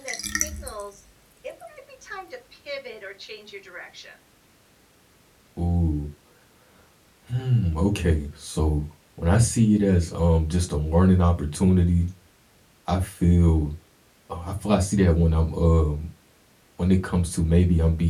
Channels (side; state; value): both; identical; correlation 1.00